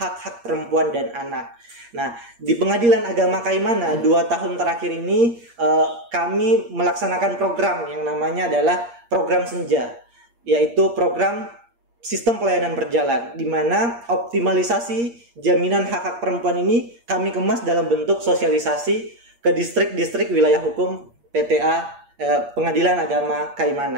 perempuan dan anak. Nah, di Pengadilan Agama Kaimana 2 tahun terakhir ini kami melaksanakan program yang namanya adalah program Senja, yaitu program sistem pelayanan berjalan, di mana optimalisasi jaminan hak-hak perempuan ini kami kemas dalam bentuk sosialisasi ke distrik-distrik wilayah hukum PTA Pengadilan Agama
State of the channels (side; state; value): left; late; 8.6 ms